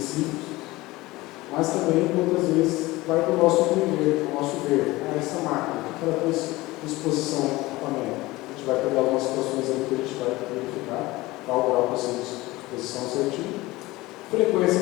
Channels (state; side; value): quieter; right; 19.8 dB